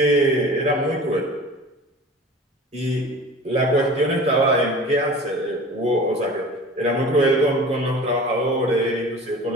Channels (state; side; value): normal; both; correlation 0.40